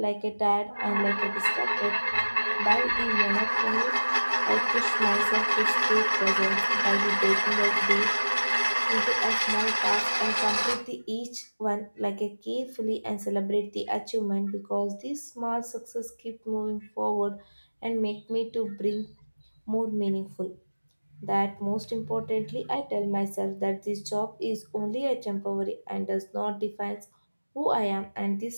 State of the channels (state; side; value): inverted; both; correlation -1.00